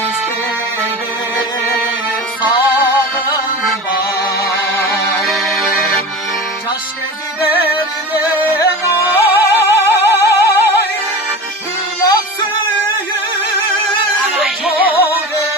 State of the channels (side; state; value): both; normal; correlation 0.31